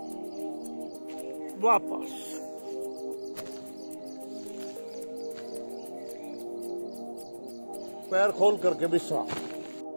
वापस पैर खोल करके विश्राम।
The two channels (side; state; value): both; inverted; correlation -1.00